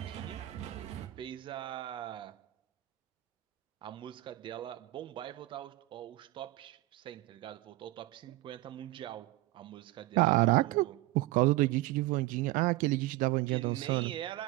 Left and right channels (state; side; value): quieter; left; 18.4 dB